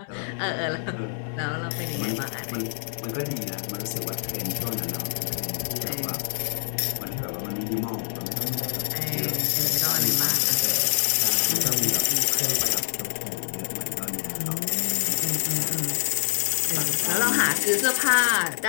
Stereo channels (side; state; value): right; silent; digital silence